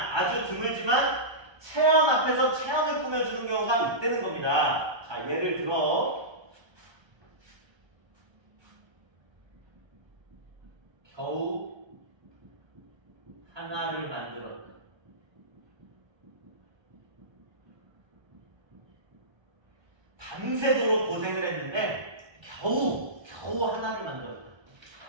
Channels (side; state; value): left; late; 1.3 ms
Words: 체언 앞에서 체언을 꾸며주는 경우가 있다는 겁니다. 자, 예를 들어 겨우 하나를 만들었다. 밤새도록 고생을 했는데 겨우 하나를 만들었다.